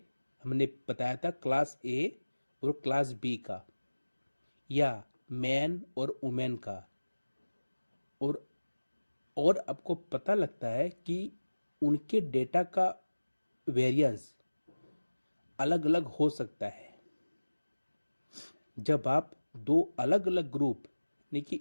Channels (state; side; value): inverted; both; correlation -1.00